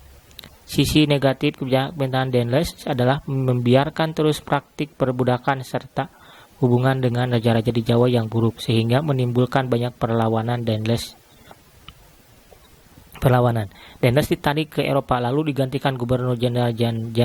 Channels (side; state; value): both; identical; correlation 1.00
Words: sisi negatif pemerintahan Daendels adalah membiarkan terus praktik perbudakan serta hubungan dengan raja-raja di Jawa yang buruk, sehingga menimbulkan banyak perlawanan. Daendels ditarik ke Eropa lalu digantikan Gubernur Jenderal